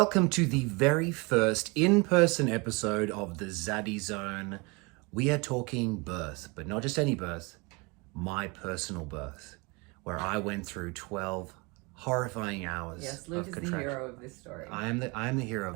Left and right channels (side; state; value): left; quieter; 27.9 dB